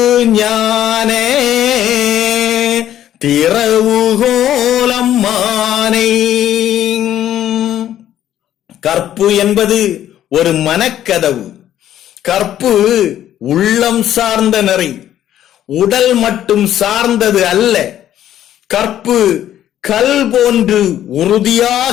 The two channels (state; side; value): quieter; right; 11.6 dB